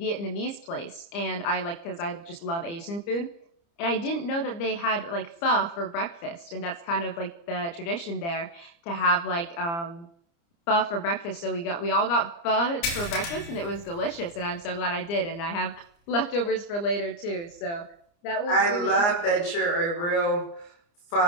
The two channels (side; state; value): right; late; 29 ms